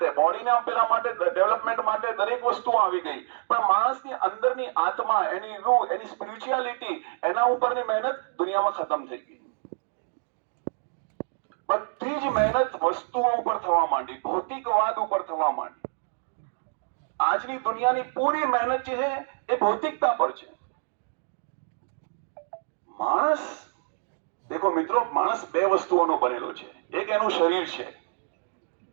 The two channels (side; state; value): left; silent; digital silence